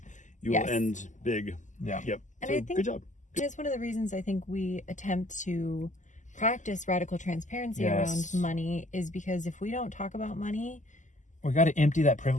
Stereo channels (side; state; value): right; late; 0.36 ms